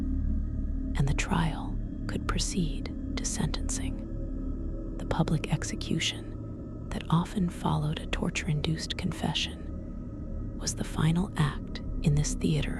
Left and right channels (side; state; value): both; identical; correlation 1.00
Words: and the trial could proceed to sentencing. The public execution that often followed a torture-induced confession was the final act in this theater